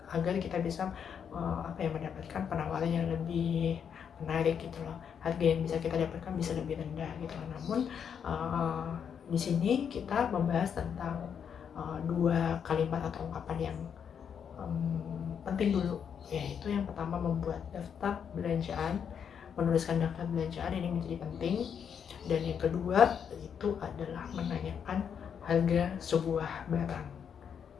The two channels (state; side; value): quieter; right; 7.6 dB